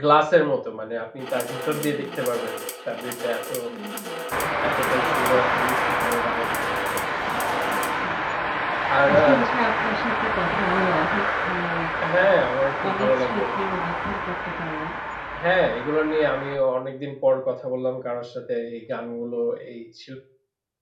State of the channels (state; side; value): identical; both; correlation 1.00